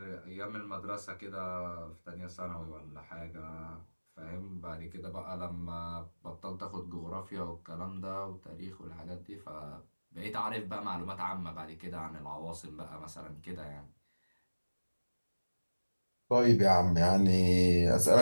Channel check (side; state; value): both; inverted; correlation -1.00